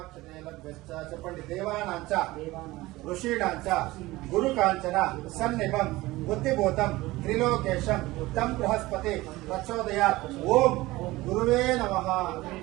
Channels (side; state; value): left; quieter; 19.1 dB